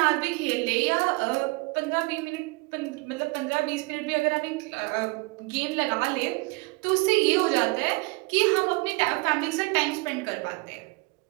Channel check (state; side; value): quieter; left; 27.2 dB